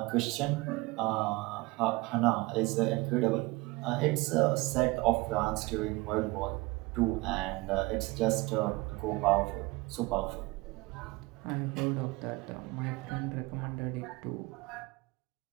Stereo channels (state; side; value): quieter; left; 23.2 dB